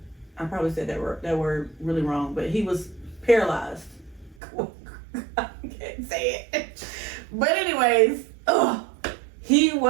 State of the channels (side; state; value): left; drops out; at 4.4 s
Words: I probably said that word really wrong, but he was paralyzed. I can't say it. But anyways, he